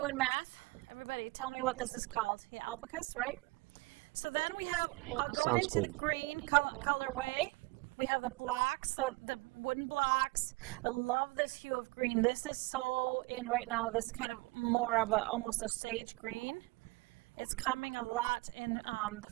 math? Everybody tell me what this is called. Yeah, alpacas, right? So then we have, going into the green colorway, we have the blocks, the wooden blocks. I love this hue of green. This is so in right now, this kind of more of a, almost a sage green. It's coming a lot in the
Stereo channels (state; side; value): quieter; left; 24.5 dB